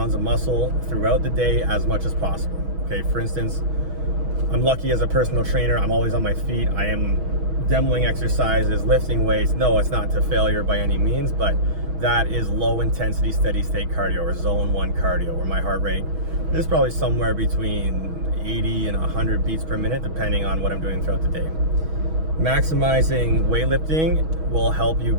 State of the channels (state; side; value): late; left; 6.2 ms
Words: of muscle throughout the day as much as possible. Okay, for instance, I'm lucky as a personal trainer, I'm always on my feet. I am demoing exercises, lifting weights. No, it's not to failure by any means, but that is low intensity steady state cardio, or zone 1 cardio, where my heart rate is probably somewhere between 80 and 100 beats per minute, depending on what I'm doing throughout the day. Maximizing weightlifting will help you